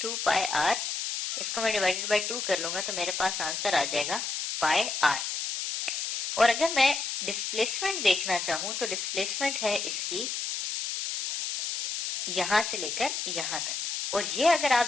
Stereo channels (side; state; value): left; noise; hiss, 3 dB below the sound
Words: पाई r, इसको मैं डिवाइडेड बाय 2 कर लूंगा तो मेरे पास आंसर आ जाएगा पाई r। और अगर मैं डिस्प्लेसमेंट देखना चाहूं तो डिस्प्लेसमेंट है इसकी यहां से लेकर यहां तक, और ये अगर आप